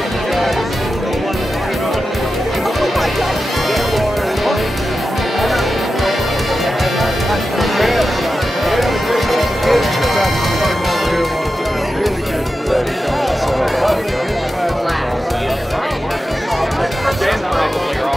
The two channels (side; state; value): both; normal; correlation 0.92